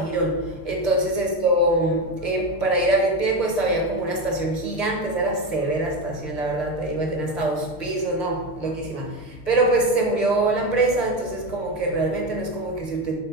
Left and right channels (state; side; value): late; right; 6.6 ms